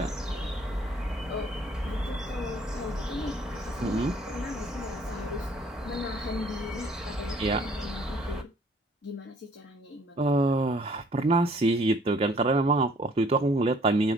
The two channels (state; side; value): normal; both; correlation 0.59